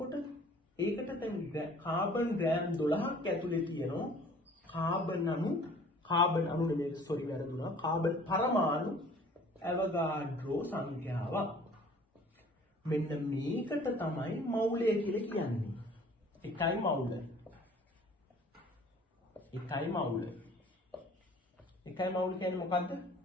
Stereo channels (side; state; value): both; normal; correlation 0.51